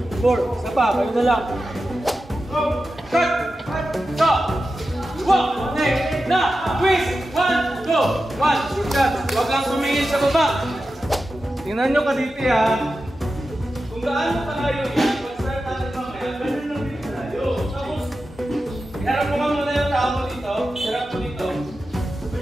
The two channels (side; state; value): both; normal; correlation 0.92